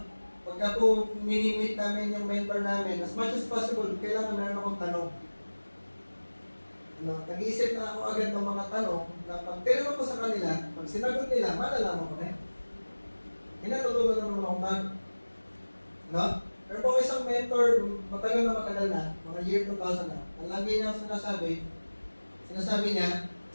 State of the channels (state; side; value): inverted; both; correlation -1.00